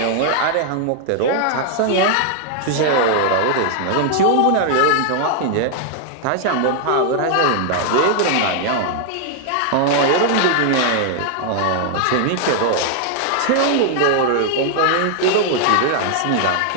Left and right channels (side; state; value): both; different; correlation 0.00